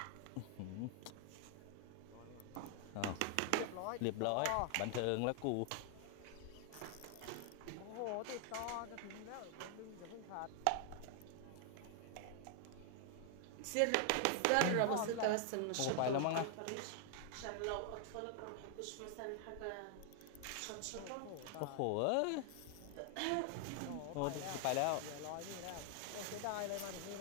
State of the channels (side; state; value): both; different; correlation 0.00